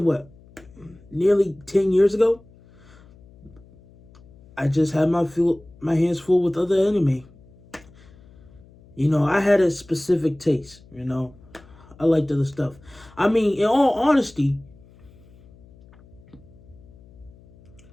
what, nearly 10 years ago? I just had my hands full with other anime. I had a specific taste. I liked other stuff. I mean, in all honesty,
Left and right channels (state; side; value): noise; left; hum, 25 dB below the sound